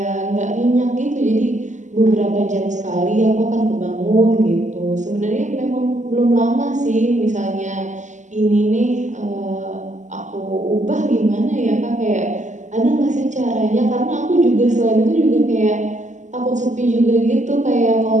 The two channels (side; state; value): left; late; 0.35 ms